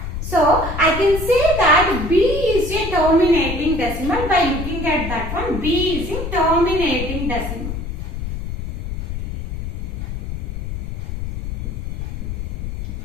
So, I can say that B is a terminating decimal. By looking at that one, B is a terminating decimal.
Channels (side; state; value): left; noise; rumble, 5 dB below the sound